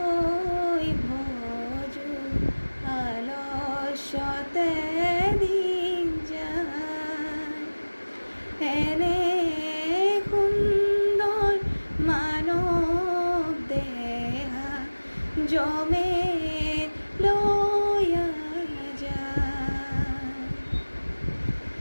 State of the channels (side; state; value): both; inverted; correlation -1.00